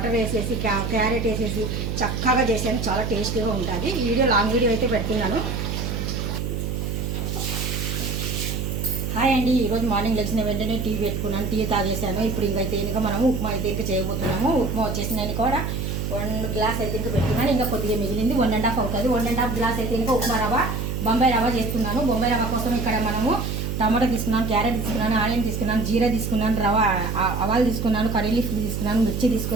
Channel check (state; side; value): noise; right; hum, 2 dB below the sound